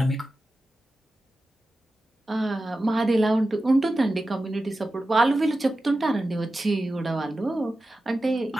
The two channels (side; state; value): both; normal; correlation 0.93